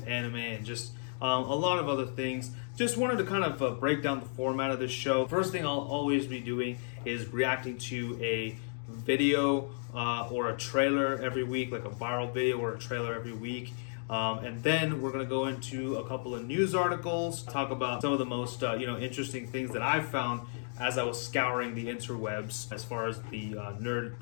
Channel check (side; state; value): right; silent; digital silence